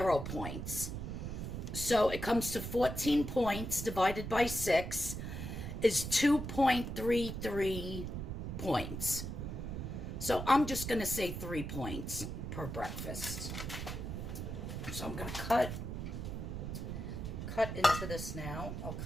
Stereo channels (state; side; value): noise; right; rumble, 5 dB below the sound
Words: points. So it comes to 14 points divided by 6 is 2.33 points. So I'm just going to say 3 points per breakfast. So I'm going to cut into this now. I'll